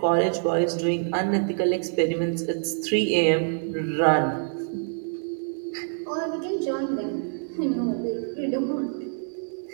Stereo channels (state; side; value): silent; left; digital silence